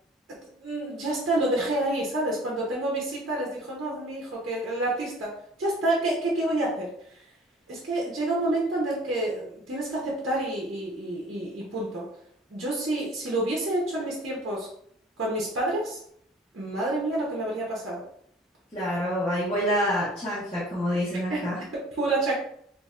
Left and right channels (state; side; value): normal; both; correlation 0.49